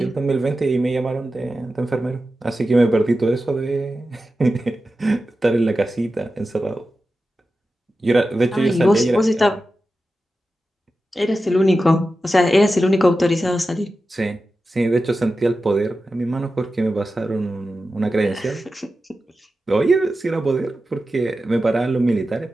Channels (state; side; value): normal; both; correlation 0.92